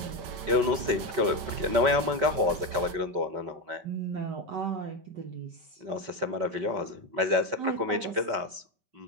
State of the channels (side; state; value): left; late; 5.2 ms